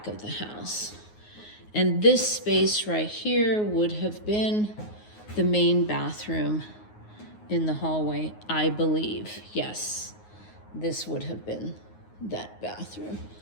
of the house. And this space right here would have been the main bathroom in the hallway, I believe. Yes, this would have been that bathroom.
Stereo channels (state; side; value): late; right; 9.5 ms